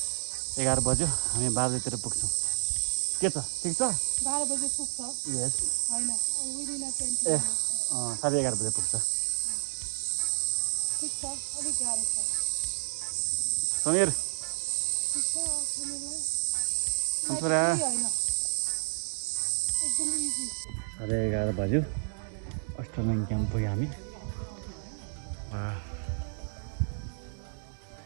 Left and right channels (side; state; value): left; silent; digital silence